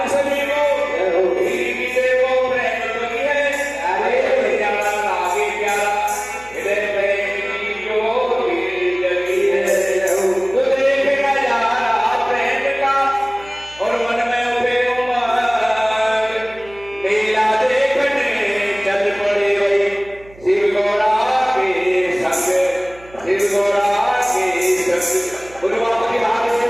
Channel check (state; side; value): noise; right; hum, 23 dB below the sound